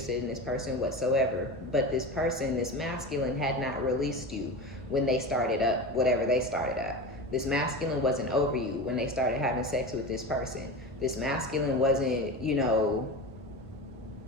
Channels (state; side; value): normal; both; correlation 0.27